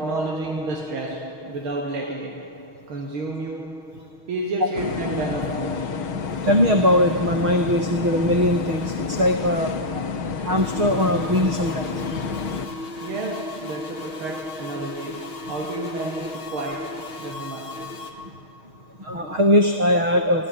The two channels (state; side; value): late; left; 6.4 ms